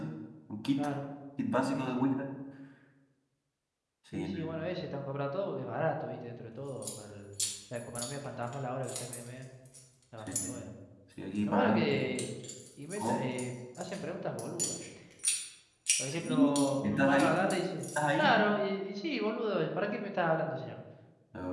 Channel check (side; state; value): both; identical; correlation 1.00